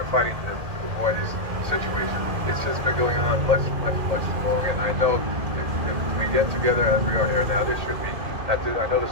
fighting to avoid this situation. It's just been going on much too long, and I know if we get together as we are here now, this should be, I know this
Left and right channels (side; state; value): left; late; 2.1 ms